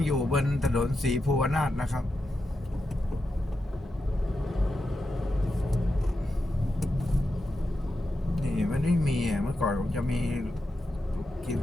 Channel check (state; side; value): normal; both; correlation 0.88